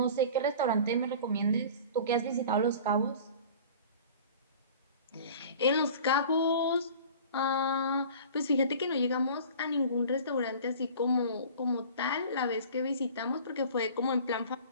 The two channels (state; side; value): inverted; both; correlation -0.42